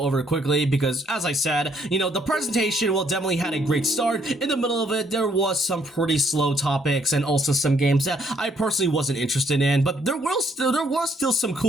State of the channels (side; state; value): both; normal; correlation 0.68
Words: over quickly because, as I said, you know, the presentation definitely had a great start. In the middle of it, there was some pretty slow topics and also some games that I personally wasn't interested in, but there was still some